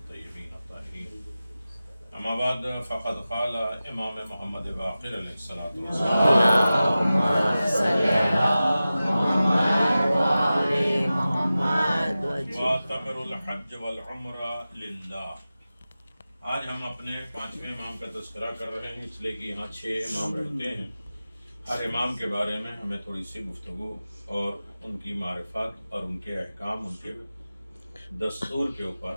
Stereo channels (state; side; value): inverted; both; correlation -0.95